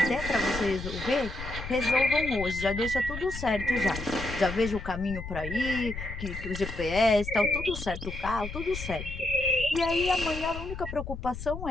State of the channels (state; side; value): noise; left; rumble, 9 dB below the sound